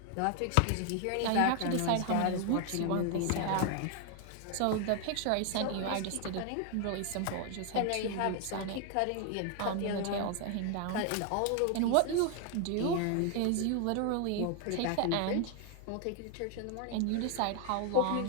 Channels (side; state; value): both; different; correlation 0.00